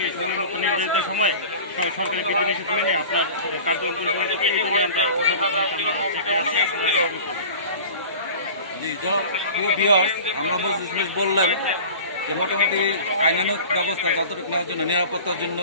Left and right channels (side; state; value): both; inverted; correlation -0.38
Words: সময় মতো নির্ধারিত সময়ে সরকারি বিধিনিষেধ মেনে আপনার কার্যক্রম পরিচালনা করতে এই জন্য আমরা থেকে আছি। জি প্রিয় ভিউয়ার্স, আমরা বললাম যে মোটামুটি আইনানুগ ব্যবস্থা যতটুকু নেওয়ার জন্য নিরাপত্তার জন্য